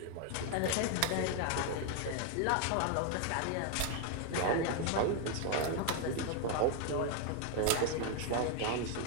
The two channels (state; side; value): different; both; correlation 0.00